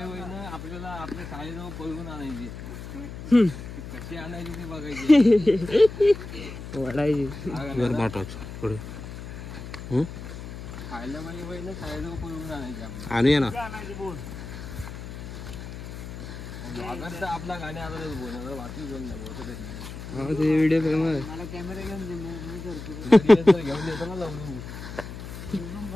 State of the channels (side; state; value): left; noise; hum, 10 dB below the sound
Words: ना, आपल्याला आपल्या शाळेजवळ पळवून आणायची. कशी आणायची ती बघायची, वडायची. खायला पाहिजे ना, शाळेजवळ पळवून आणायची आपल्याला. आणूया ना. आपला गाडी आता बोलणार बाकी बोल नाही. Video famous. मला कॅमेरा घेऊन घेऊन येतो ना जाऊन.